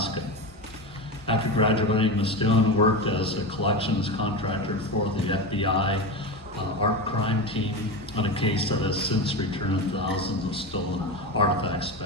After graduating, Ms. Stone worked as a collections contractor for the FBI art crime team on a case that has since returned thousands of stolen artifacts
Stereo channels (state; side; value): normal; both; correlation 0.21